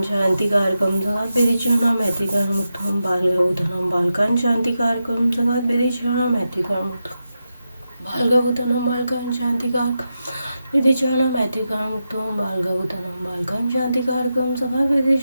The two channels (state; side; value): inverted; both; correlation -0.89